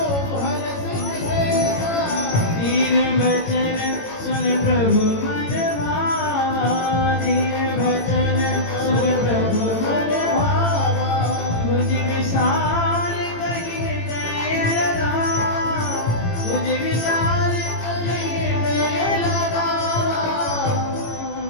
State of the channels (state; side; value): late; right; 18 ms